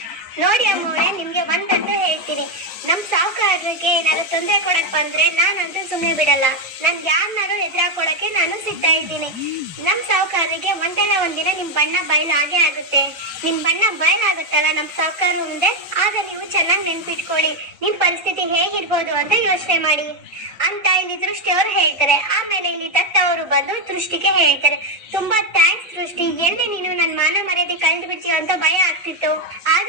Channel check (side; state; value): both; normal; correlation 0.05